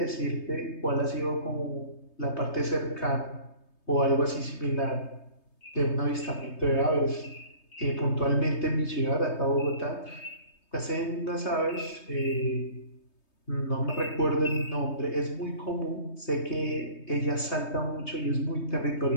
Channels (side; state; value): right; late; 3.2 ms